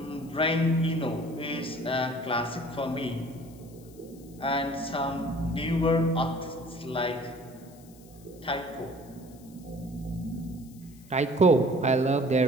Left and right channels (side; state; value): left; noise; hiss, 25 dB below the sound